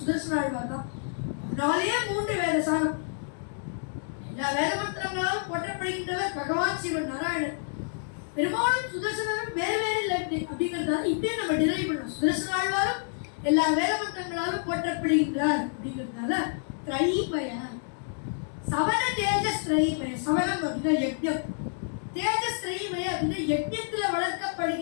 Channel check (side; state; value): right; silent; digital silence